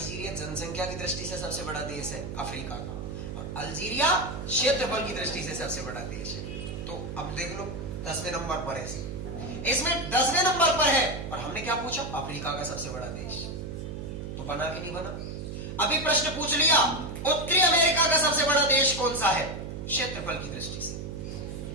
जनसंख्या की दृष्टि से सबसे बड़ा देश है अफ्रीका का, और अल्जीरिया क्षेत्रफल की दृष्टि से सबसे बड़ा देश है। तो अब देख लो, 10वें नंबर पर है, इसमें 10वें नंबर पर है, और हमने क्या पूछा? अफ्रीका का सबसे बड़ा देश। तो बना कि नहीं बना? अभी प्रश्न पूछ लिया, उत्तरी अमेरिका का सबसे बड़ा देश कौन सा है क्षेत्रफल की दृष्टि से?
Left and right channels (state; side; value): noise; right; hum, 7 dB below the sound